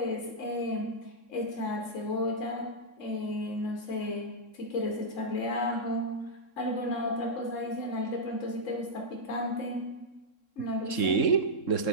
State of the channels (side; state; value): right; late; 3.7 ms